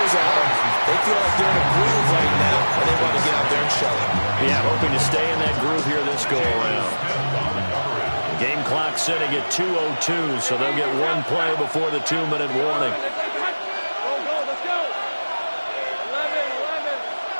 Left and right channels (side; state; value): both; inverted; correlation -1.00